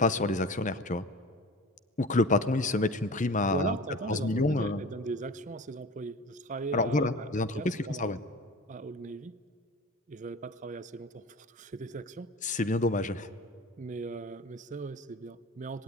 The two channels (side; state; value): both; normal; correlation 0.36